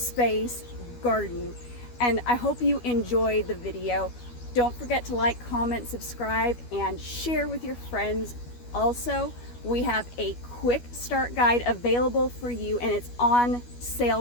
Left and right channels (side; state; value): right; late; 12 ms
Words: garden. And I hope you enjoy the video. Don't forget to like, comment, subscribe, and share with your friends. Also, we have a quick start guide available for you, and it's on